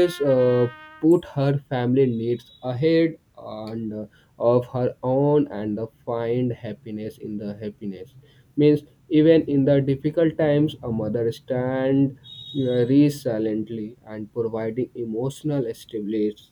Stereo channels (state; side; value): identical; both; correlation 1.00